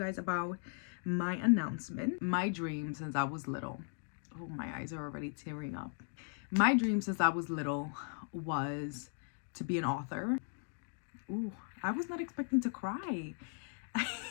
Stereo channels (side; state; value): right; silent; 53 dB below the other